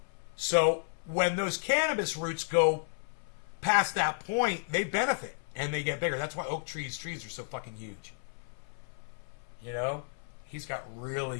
So when those cannabis roots go past that point, they benefit and they get bigger. That's why Oak Tree's trees are so fucking huge. You know, he's got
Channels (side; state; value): right; silent; 56 dB below the other